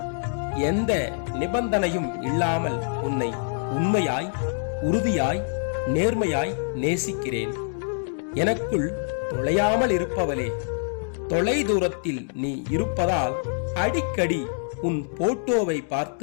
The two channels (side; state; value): right; silent; digital silence